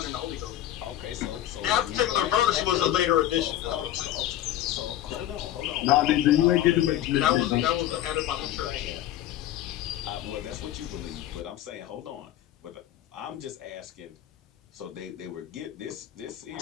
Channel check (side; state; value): right; quieter; 12.7 dB